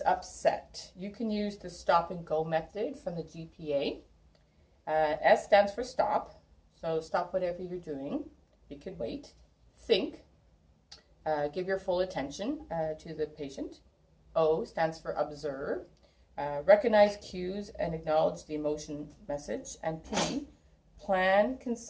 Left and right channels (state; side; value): identical; both; correlation 1.00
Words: upset, you can use the stop and go method from the GPA. S stands for stop, so stop whatever you're doing. You could wait. Think. Give your full attention to the patient. O stands for observe. Recognize cues and acknowledge the emotion message. And P, plan,